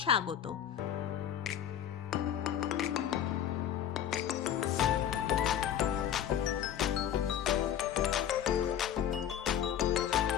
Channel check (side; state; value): right; quieter; 10.0 dB